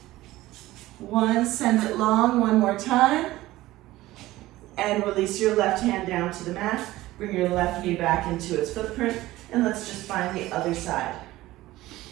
1. Send it long 1 more time. And release your left hand down to the mat. Bring your left knee back into its footprint. And let's just find the other side.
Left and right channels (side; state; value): left; quieter; 17.0 dB